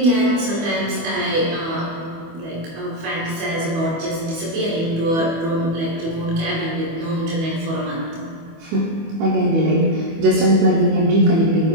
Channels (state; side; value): late; left; 24 ms